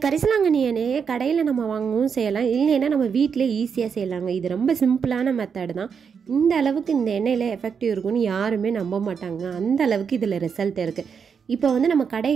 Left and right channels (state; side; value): quieter; left; 6.5 dB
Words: கரிசலாங்கண்ணி எண்ணெயை கடையில் நம்ம வாங்கவும் செய்யலாம், இல்லைன்னா நம்ம வீட்டிலே ஈஸியாக செய்யலாங்க. இது ரொம்ப சிம்பிளான மெத்தட் தான். இந்த அளவுக்கு இந்த எண்ணெயில் எஃபெக்டிவ் இருக்குன்னு யாருமே நம்ப மாட்டாங்க. அந்த அளவுக்கு இதில் ரிசல்ட் இருக்குது. இப்போ நம்ம